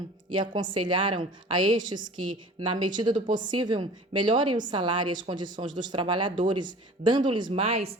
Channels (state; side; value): normal; both; correlation 0.44